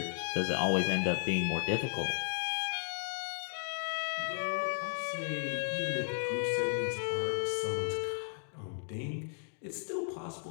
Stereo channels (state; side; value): silent; right; digital silence